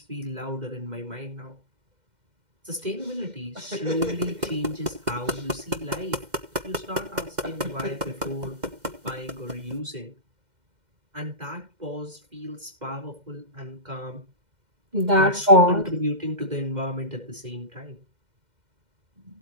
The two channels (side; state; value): left; late; 2.1 ms